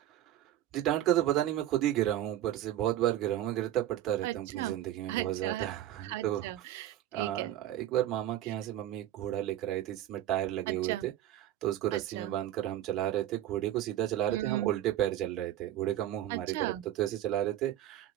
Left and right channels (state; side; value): quieter; left; 12.7 dB